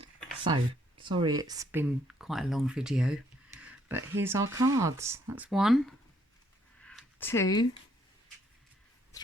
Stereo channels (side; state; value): both; normal; correlation 0.68